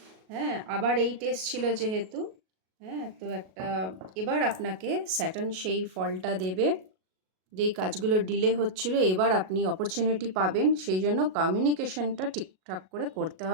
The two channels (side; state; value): left; late; 37 ms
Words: হ্যাঁ, আবার এই টেস্ট ছিল যেহেতু, হ্যাঁ, তো একটা এবার আপনাকে স্যাটার্ন সেই ফলটা দেবে। যেই কাজগুলো ডিলে হচ্ছিল, এবার আপনি অপরচুনিটি পাবেন, সেই জন্য কমিউনিকেশনটা ঠিকঠাক করে করতে